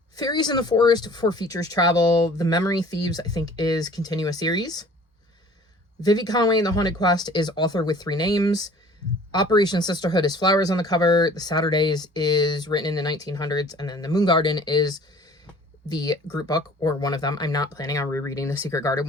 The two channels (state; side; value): normal; both; correlation 0.50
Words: Fairies in the Forest, 4 features travel. The Memory Thieves, I think, is continuous series. Vivi Conway in The Haunted Quest is author with 3 names. Operation Sisterhood is flowers on the cover. The Saturdays is written in the 1900s. And then The Moon Garden is the group book, or one of them. I'm not planning on rereading The Secret Garden,